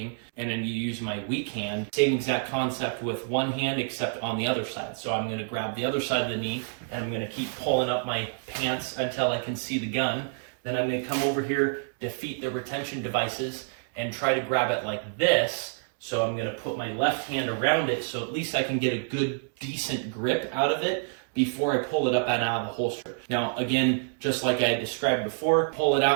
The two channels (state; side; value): silent; left; digital silence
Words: and then you use my weak hand, same exact concept with one hand except on the other side. So I'm gonna grab the other side of the knee and I'm gonna keep pulling up my pants until I can see the gun. Then I'm gonna come over here, defeat the retention devices, and try to grab it like this. So I'm gonna put my left hand around it so at least I can get a good, decent grip out of it before I pull it up and out of the holster. Now, again, just like I described before, pull it